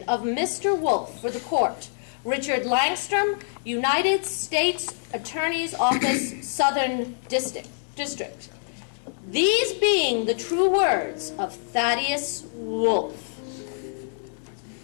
of Mr. Wolf for the court. Richard Langstrom, United States Attorney's Office, Southern District. These being the true words of Thaddeus Wolf.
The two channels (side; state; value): right; silent; 61 dB below the other